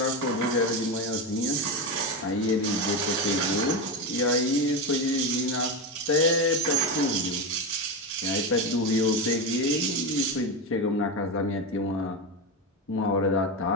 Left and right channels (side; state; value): both; normal; correlation 0.15